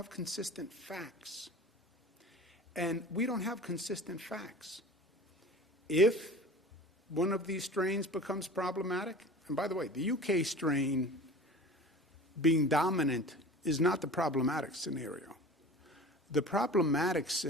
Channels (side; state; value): both; normal; correlation 0.39